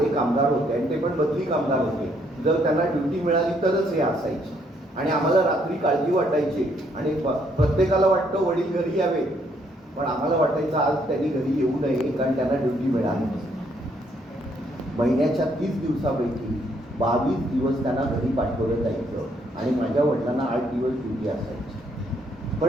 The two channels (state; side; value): normal; both; correlation 0.70